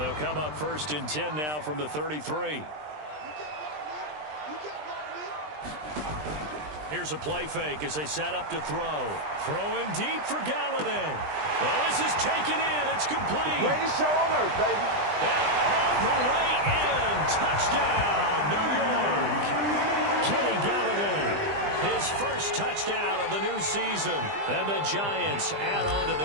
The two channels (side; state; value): left; late; 20 ms